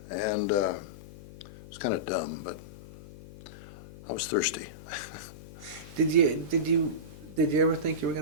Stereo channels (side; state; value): left; noise; hum, 16 dB below the sound